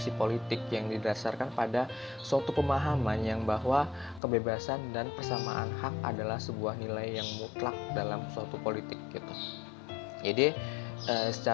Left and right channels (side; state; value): right; drops out; at 4.2 s